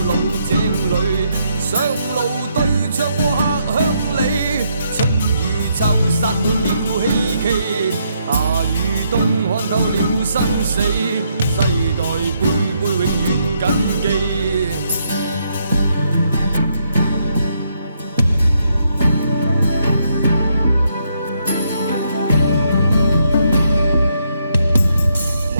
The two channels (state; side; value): inverted; both; correlation -0.76